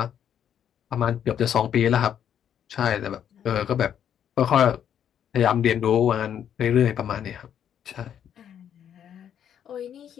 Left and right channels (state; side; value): quieter; right; 9.3 dB